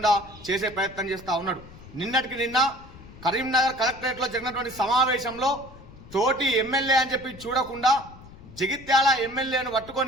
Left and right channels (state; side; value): noise; left; rumble, 19 dB below the sound